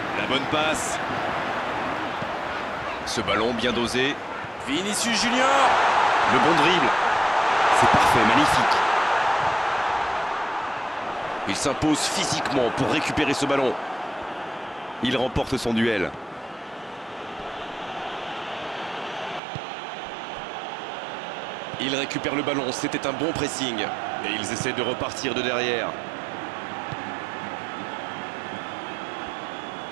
La bonne passe. Ce ballon bien dosé. Vinicius Junior. Le bon dribble. C'est parfait, magnifique. Il s'impose physiquement pour récupérer ce ballon. Il remporte son duel. Il récupère le ballon, c'était un bon pressing. Et ils essaient de repartir de derrière.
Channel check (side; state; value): left; drops out; at 19.4 s